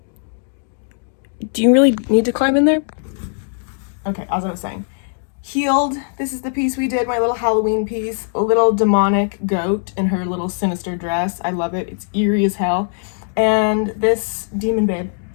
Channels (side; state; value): right; silent; digital silence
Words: Do you really need to climb in there? Okay, as I was saying. Healed. This is the piece we did, my little Halloween piece. A little demonic goat in her little sinister dress. I love it. It's eerie as hell. And this Demon Babe,